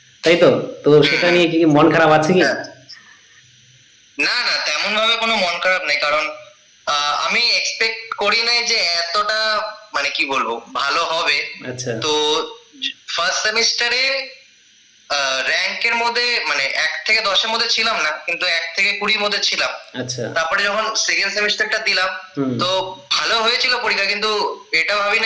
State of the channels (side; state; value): both; identical; correlation 1.00